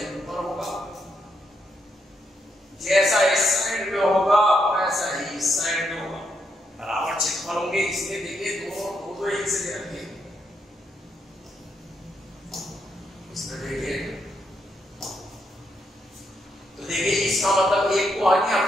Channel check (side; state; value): both; normal; correlation 0.79